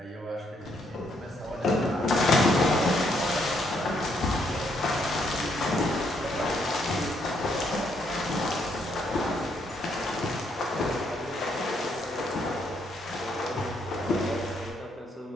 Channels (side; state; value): both; normal; correlation 0.73